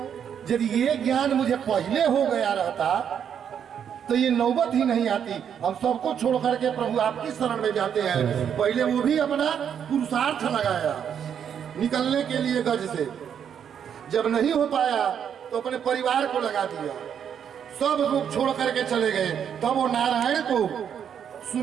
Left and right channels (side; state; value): left; quieter; 8.3 dB